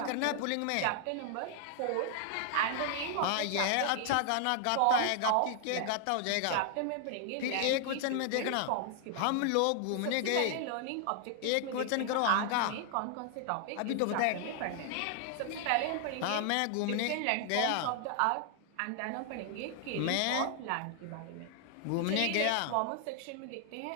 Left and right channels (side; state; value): both; different; correlation 0.00